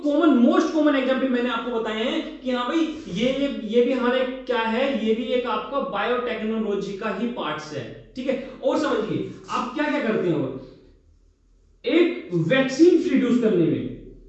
कॉमन मोस्ट कॉमन एग्जांपल मैंने आपको बताए हैं कि हाँ भाई ये भी हमारे क्या है, ये भी एक आपका बायोटेक्नोलॉजी का ही पार्ट्स है, ठीक है। और समझिए आप क्या क्या करते हो, एक वैक्सीन प्रोड्यूस करने में,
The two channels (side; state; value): both; identical; correlation 1.00